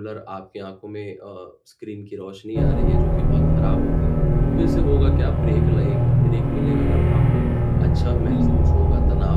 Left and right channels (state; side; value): identical; both; correlation 1.00